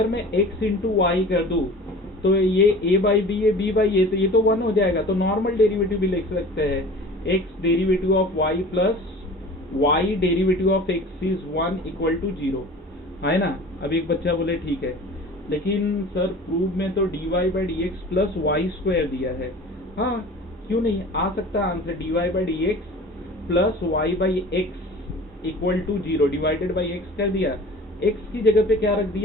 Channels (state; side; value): normal; both; correlation 0.41